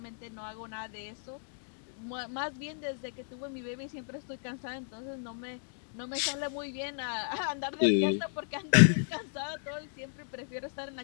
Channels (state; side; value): silent; right; digital silence